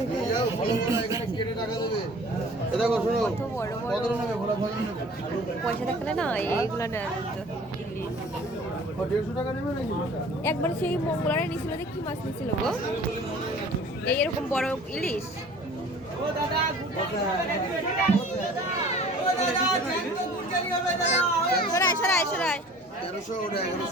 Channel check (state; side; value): normal; both; correlation 0.47